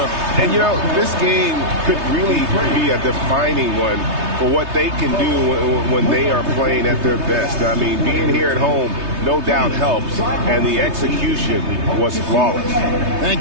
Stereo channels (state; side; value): late; left; 3.3 ms